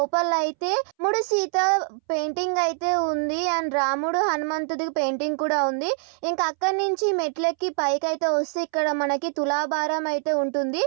అయితే రాముడు సీత పెయింటింగ్ అయితే ఉంది అండ్ రాముడు హనుమంతుడి పెయింటింగ్ కూడా ఉంది. ఇంకా అక్కడి నుంచి మెట్లెక్కి పైకి అయితే వస్తే ఇక్కడ మనకి తులాభారం అయితే ఉంటుంది.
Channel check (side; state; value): left; silent; 62 dB below the other